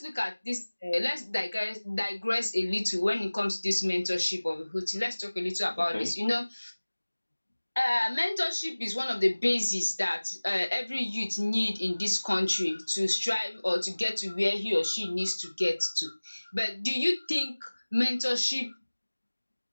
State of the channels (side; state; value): both; inverted; correlation -1.00